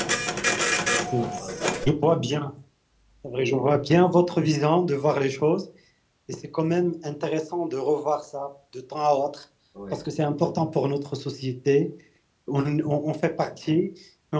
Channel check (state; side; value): identical; both; correlation 1.00